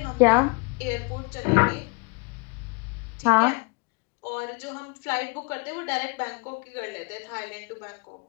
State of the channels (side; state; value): right; quieter; 29.7 dB